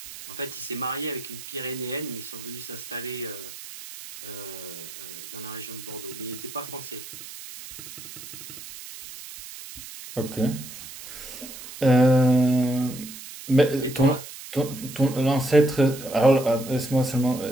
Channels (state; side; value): noise; right; hiss, 13 dB below the sound